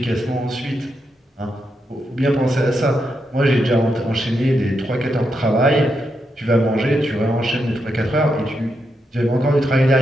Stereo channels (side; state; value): both; normal; correlation 0.83